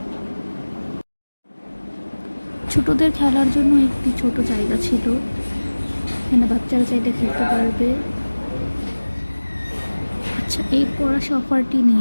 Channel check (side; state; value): both; inverted; correlation -1.00